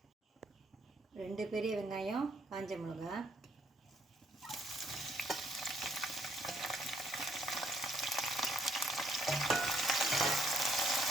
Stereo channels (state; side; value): normal; both; correlation 0.68